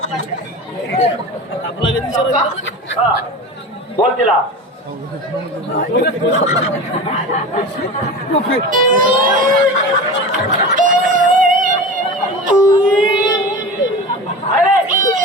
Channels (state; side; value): normal; both; correlation 0.30